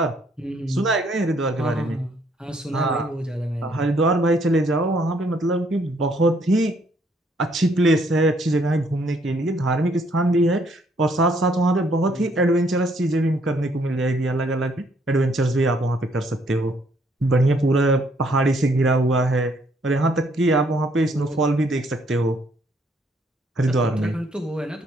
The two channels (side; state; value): both; normal; correlation 0.67